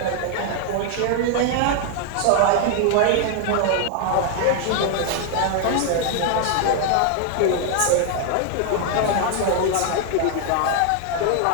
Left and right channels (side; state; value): both; different; correlation 0.00